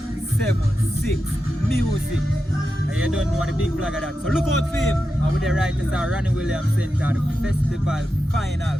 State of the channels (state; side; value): normal; both; correlation 0.89